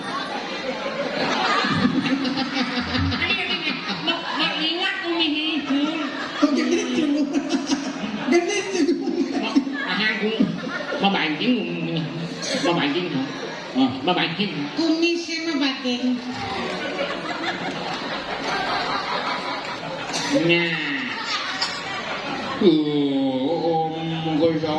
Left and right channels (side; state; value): both; identical; correlation 1.00